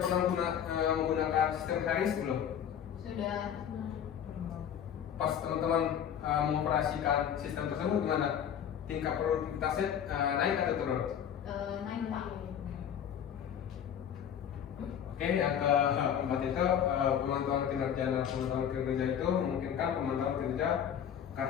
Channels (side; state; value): right; quieter; 9.0 dB